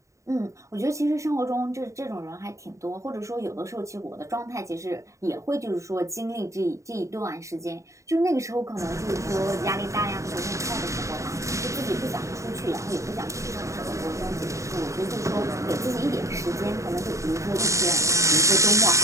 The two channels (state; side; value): late; left; 0.15 ms